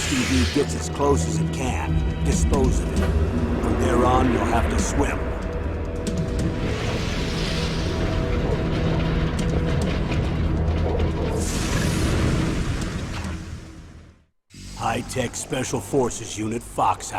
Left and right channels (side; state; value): both; identical; correlation 1.00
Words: gets as close as it can, dispose of it. From there on, you'll have to swim. High-tech Special Forces Unit